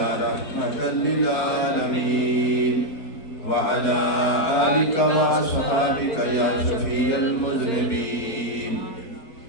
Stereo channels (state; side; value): late; right; 4.4 ms